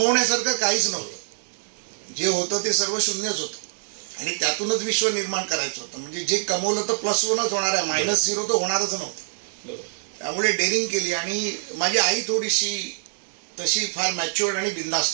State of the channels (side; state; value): left; silent; 62 dB below the other